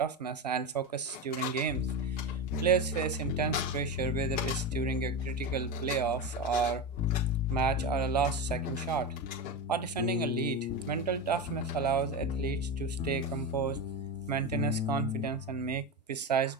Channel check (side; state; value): both; normal; correlation 0.19